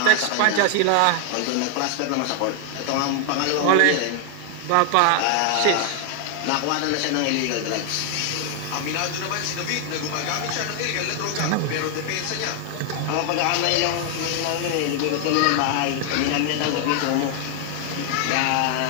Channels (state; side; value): different; both; correlation 0.00